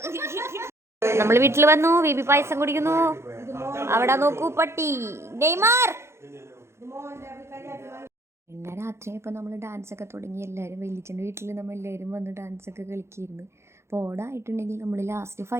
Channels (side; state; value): left; late; 0.13 ms